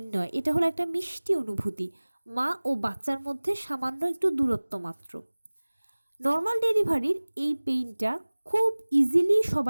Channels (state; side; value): inverted; both; correlation -1.00